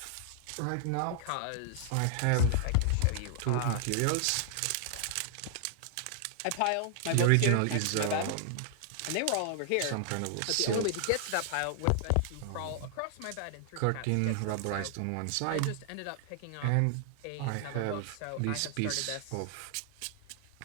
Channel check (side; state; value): both; different; correlation 0.00